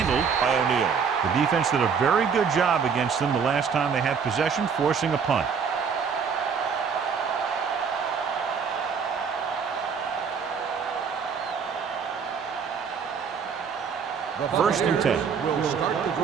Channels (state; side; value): quieter; left; 6.3 dB